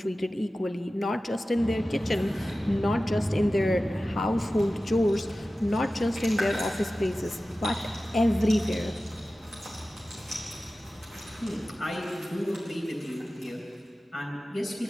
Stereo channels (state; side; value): normal; both; correlation 0.95